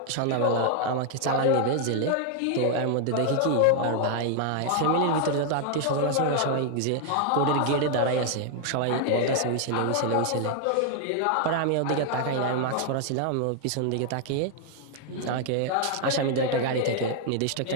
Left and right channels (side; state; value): both; different; correlation 0.00